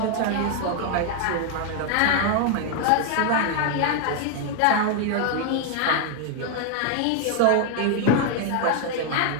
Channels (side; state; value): both; different; correlation 0.00